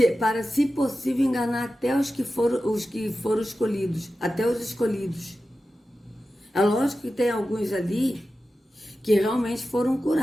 para, se possível, enganar até os que foram escolhidos, até os escolhidos. É lógico que tem alguns ali que realmente foram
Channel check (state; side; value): normal; both; correlation 0.93